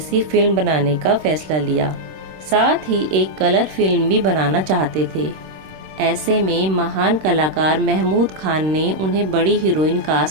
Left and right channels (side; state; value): left; late; 26 ms